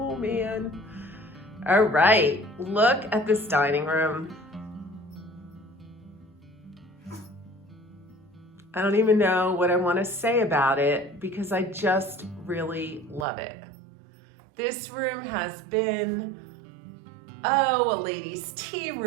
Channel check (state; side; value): drops out; left; at 13.2 s